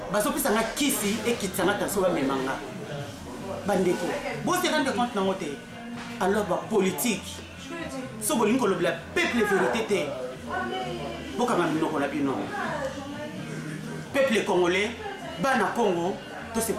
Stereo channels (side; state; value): both; identical; correlation 1.00